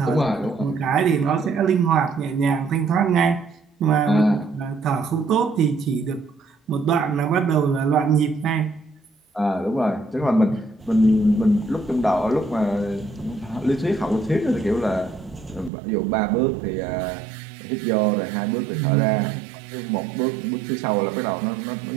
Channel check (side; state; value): left; drops out; at 15.7 s